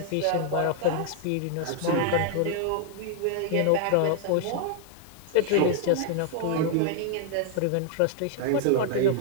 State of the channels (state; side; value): different; both; correlation 0.00